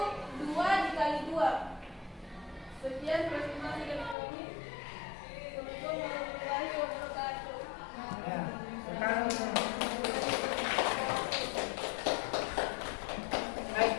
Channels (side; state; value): right; drops out; at 4.2 s